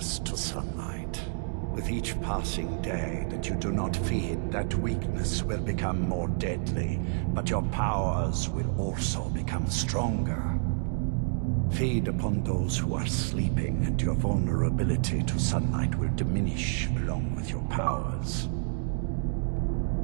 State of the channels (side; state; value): left; silent; digital silence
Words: to sunlight. With each passing day that you do not feed, that weakness will become more deadly, but your powers will also become stronger. Feed upon those who are sleeping, and your vulnerability to sunlight will diminish along with your powers.